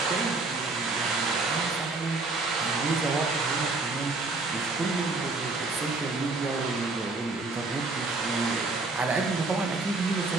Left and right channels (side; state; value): left; quieter; 3.5 dB